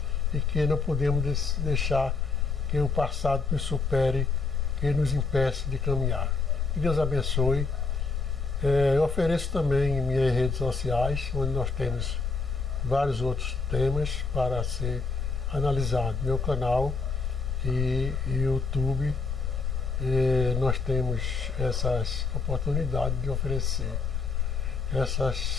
e que não podemos deixar que o passado nos supere, que nos impeça de caminhar. Que Deus abençoe. Eu ofereço também em minhas redes sociais, onde nós temos vários outros temas para ser analisado. Meu canal e YouTube, nós temos essas oportunidades de oferecer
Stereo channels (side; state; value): right; quieter; 4.2 dB